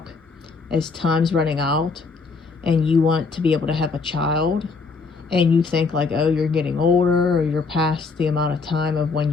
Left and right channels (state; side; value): quieter; right; 4.5 dB